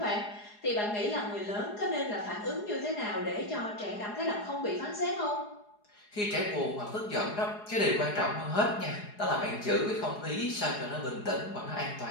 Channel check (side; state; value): right; late; 4.8 ms